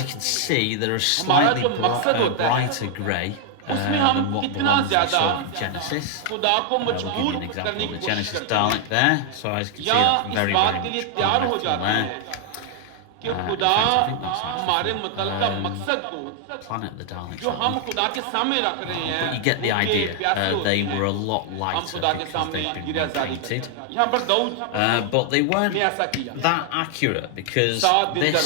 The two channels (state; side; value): different; both; correlation 0.00